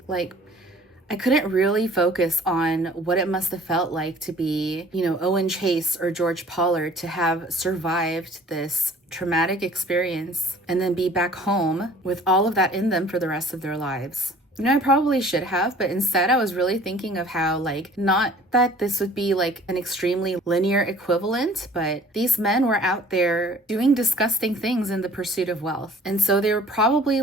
Like, I couldn't really focus on what it must have felt like to be, Owen Chase or George Pollard, to have survived this traumatic experience and then be back home with all of that in them for the rest of their lives. I probably should have, but instead I was really thinking of how, not that this would be an extremely linear equivalent, but these men were out there doing disgusting things in the pursuit of wealth. And so they were probably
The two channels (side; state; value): both; normal; correlation 0.51